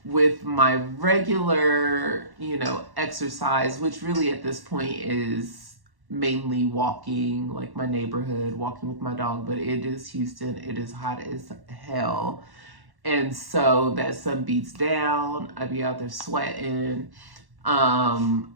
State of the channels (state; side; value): late; left; 1.1 ms